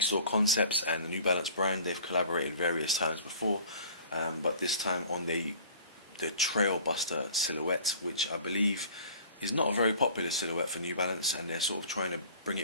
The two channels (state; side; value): inverted; both; correlation -0.47